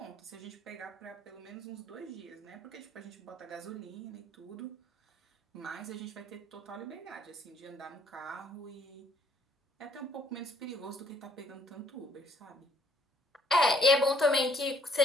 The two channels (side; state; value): both; normal; correlation 0.64